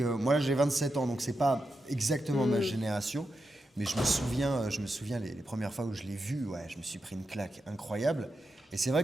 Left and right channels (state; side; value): normal; both; correlation 0.87